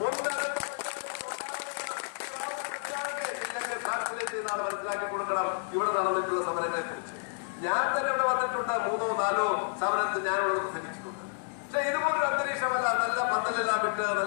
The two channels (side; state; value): right; silent; digital silence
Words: മനസ്സിലാക്കി കൊടുക്കണം. ഇവിടെ നടന്നിട്ടുള്ള സമരങ്ങളെ കുറിച്ച് ഞാൻ തന്നെ ഇവിടെ വന്നിട്ടുണ്ട്, 3-4 സമരത്തിൽ ഞാൻ ഇവിടെ പ്രസംഗിച്ചിട്ടുണ്ട്. പക്ഷെ ഇതുപോലൊരു അന്തരീക്ഷമല്ല. നല്ല പന്തലെല്ലാം വിട്ട്